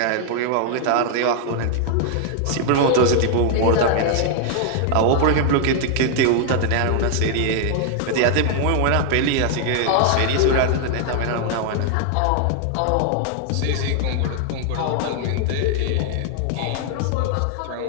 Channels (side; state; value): both; different; correlation 0.00